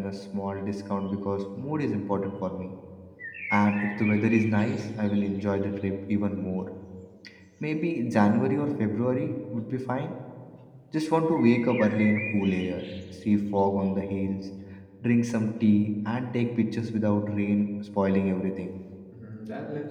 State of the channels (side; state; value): both; identical; correlation 1.00